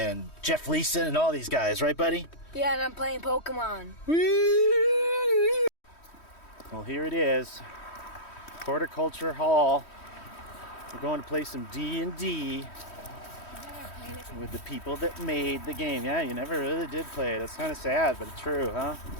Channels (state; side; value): late; right; 3.1 ms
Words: Jeff Leeson, and all these guys, right, buddy? Yeah, and I'm playing Pokemon. Well, here it is. Horticulture Hall. We're going to play some D&D with the people that made the game. Yeah, you never really did play it. It's kind of sad, but it's true, huh?